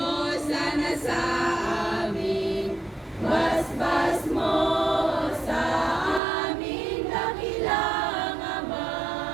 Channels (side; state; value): left; drops out; at 6.2 s